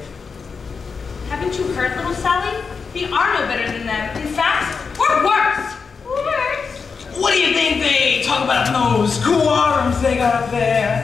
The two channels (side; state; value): right; quieter; 5.3 dB